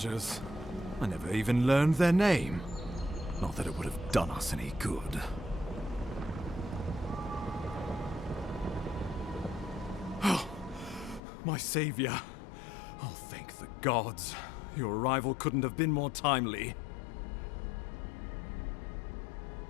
I never even learned their name. Not that it would have done us any good. Oh, my savior. Oh, thank the gods. Your arrival couldn't have been more timely.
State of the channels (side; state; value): right; drops out; at 11.2 s